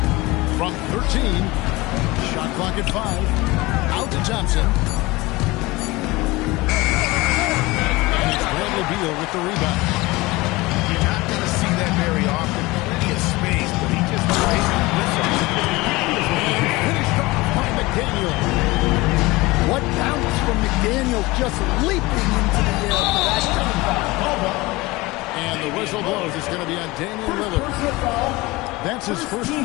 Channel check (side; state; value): right; quieter; 21.7 dB